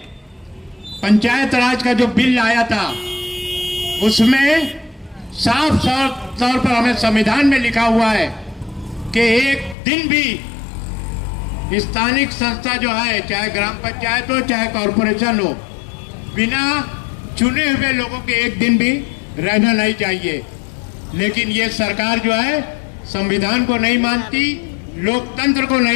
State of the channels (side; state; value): right; drops out; at 9.8 s